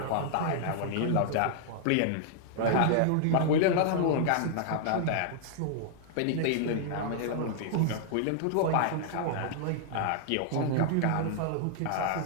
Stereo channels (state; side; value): different; both; correlation -0.01